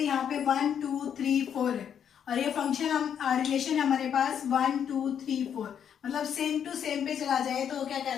पे 1 2 3 4 है, और ये फंक्शन हम रिलेशन हमारे पास 1 2 3 4, मतलब सेम टू सेम पे चला जाए तो क्या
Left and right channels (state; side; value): quieter; right; 8.5 dB